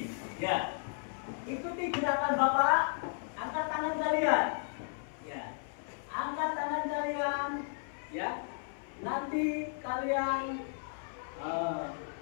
Ya, ikuti gerakan Bapak. Angkat tangan kalian. Ya, angkat tangan kalian. Ya, nanti kalian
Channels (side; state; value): right; silent; 55 dB below the other